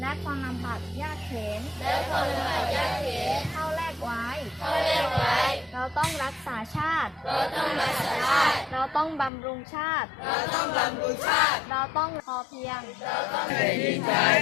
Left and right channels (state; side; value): drops out; right; at 9.3 s